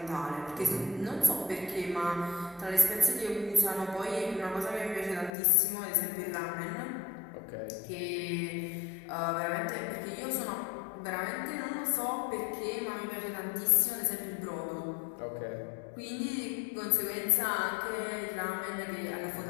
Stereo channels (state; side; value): drops out; right; at 5.3 s